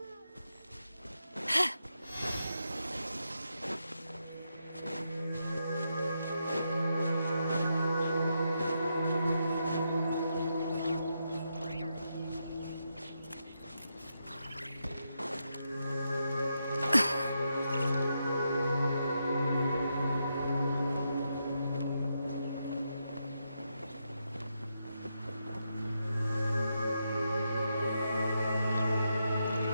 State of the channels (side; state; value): both; inverted; correlation -0.83